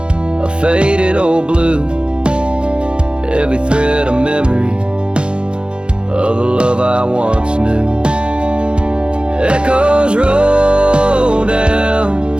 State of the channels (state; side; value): late; left; 0.054 ms